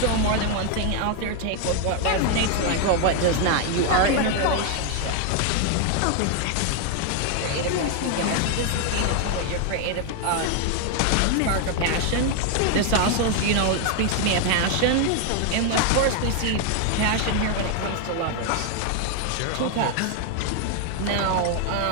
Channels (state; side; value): different; both; correlation 0.01